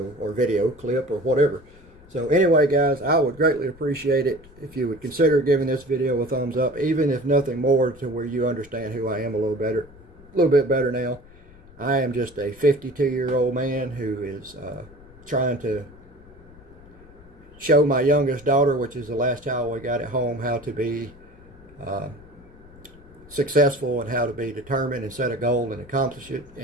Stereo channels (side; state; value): left; noise; rumble, 23 dB below the sound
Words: or video clip or whatever. So anyway, guys, I would greatly appreciate it if you would consider giving this video a thumbs up, even if nothing more, to where you understand who I am a little bit better now. I am just a 52-year-old man who is trying to show my youngest daughter, which is the last child we got at home, how to be successful and how to be determined and set a goal and accomplish it.